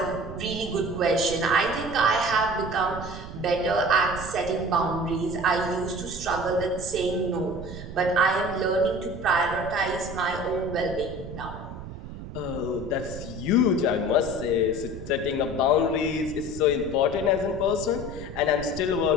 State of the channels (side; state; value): right; noise; rumble, 11 dB below the sound